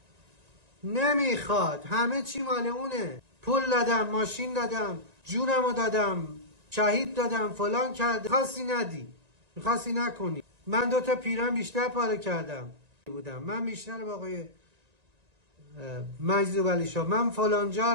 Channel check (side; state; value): left; late; 1.9 ms